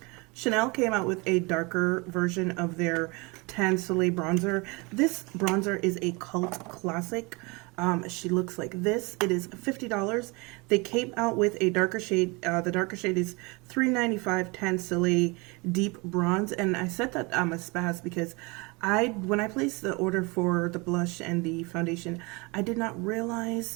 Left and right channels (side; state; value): left; quieter; 27.3 dB